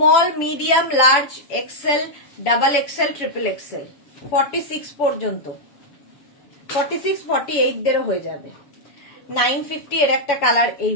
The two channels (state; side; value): late; right; 7.0 ms